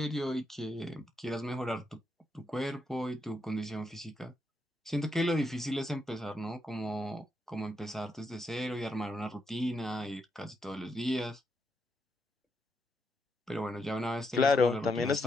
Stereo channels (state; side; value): normal; both; correlation 0.80